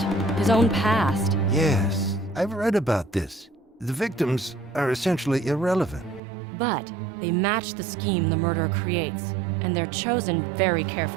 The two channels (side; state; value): left; drops out; at 6.2 s